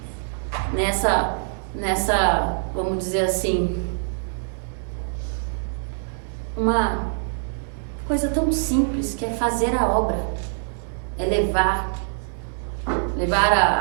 nessa, vamos dizer assim, uma coisa tão simples que é fazer a obra, é levar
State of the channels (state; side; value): silent; left; digital silence